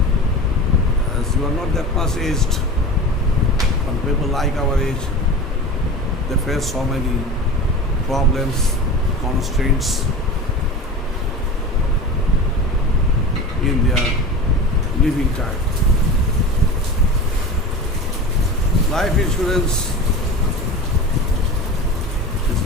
as you are not that much aged, but people like our age, they face so many problems, constraints in their living time. Life insurance is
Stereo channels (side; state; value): both; normal; correlation 0.31